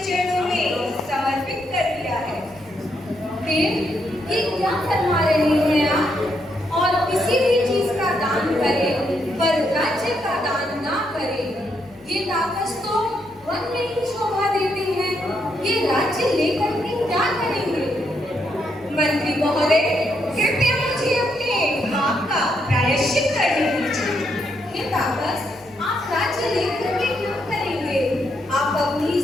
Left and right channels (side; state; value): left; noise; hum, 28 dB below the sound